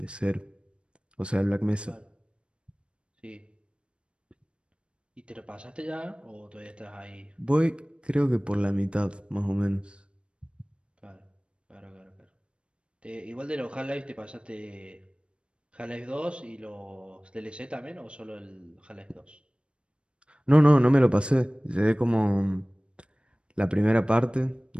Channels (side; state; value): left; late; 0.057 ms